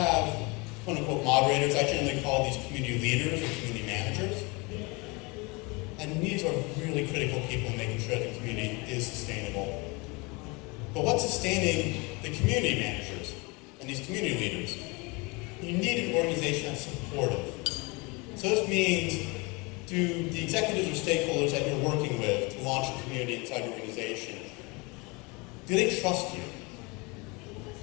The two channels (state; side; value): quieter; right; 27.5 dB